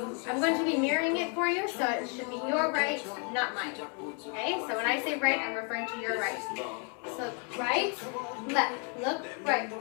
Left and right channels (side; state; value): right; quieter; 37.0 dB